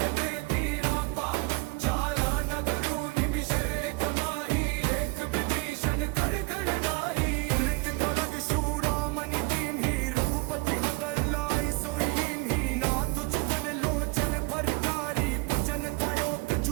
देती रापा जारा नगरू निमिषेक माही एक विभीषण कर कर नाही उलित कलग शूरामणि कीन्ही रघुपति हतर लाई सोईन ही नाथ चुपन लोचन भरतारी पूजन तयो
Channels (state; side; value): quieter; left; 26.2 dB